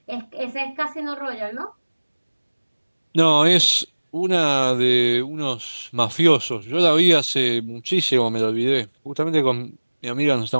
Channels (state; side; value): inverted; both; correlation -1.00